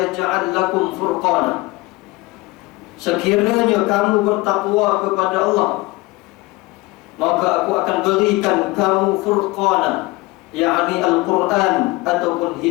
lakum furqana. Sekiranya kamu bertakwa kepada Allah, maka aku akan berikan kamu furqana, yakni Al-Quran ataupun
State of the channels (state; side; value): quieter; right; 22.2 dB